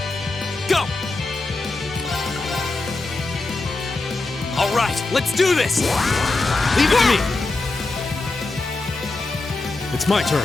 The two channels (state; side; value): quieter; right; 3.3 dB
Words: Go! All right, let's do this! Leave it to me. It's my